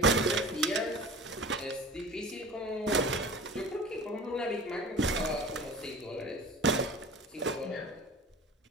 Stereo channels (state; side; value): normal; both; correlation 0.38